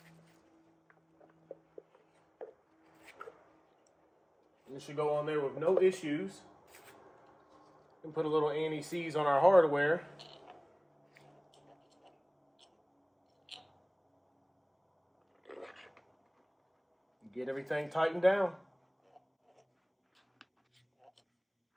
It should go on there with no issues. And put a little anti-seize on our hardware. Get everything tightened down.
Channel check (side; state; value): both; identical; correlation 1.00